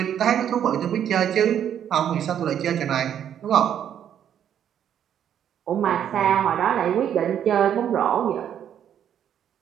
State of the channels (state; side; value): quieter; left; 9.6 dB